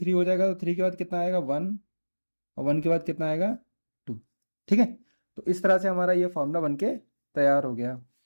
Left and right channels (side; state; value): both; inverted; correlation -1.00